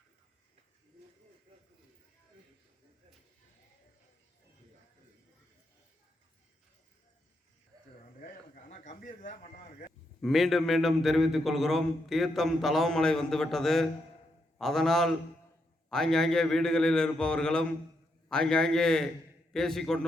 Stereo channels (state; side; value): normal; both; correlation 0.81